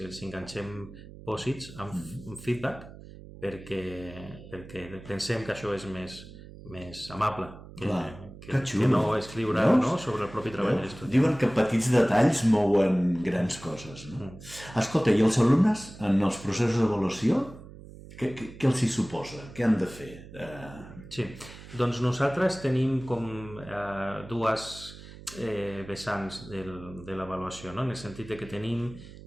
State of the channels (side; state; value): right; noise; hum, 16 dB below the sound